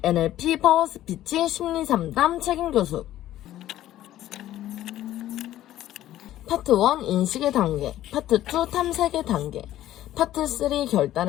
NLP 파워스피치 심리상담 책임교수. 파트 1 인식의 단계, 파트 2 탐색의 단계, 파트 3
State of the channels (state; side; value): quieter; right; 13.4 dB